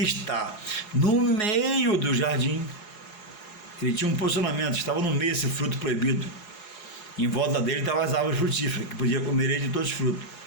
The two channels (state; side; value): late; right; 4.8 ms